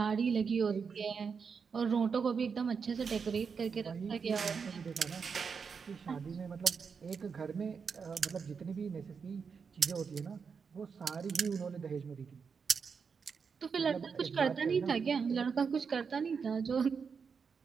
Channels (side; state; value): left; quieter; 5.9 dB